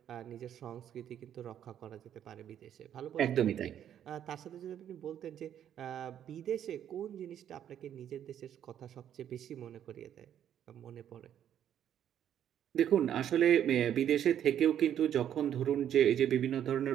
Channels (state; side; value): quieter; left; 10.0 dB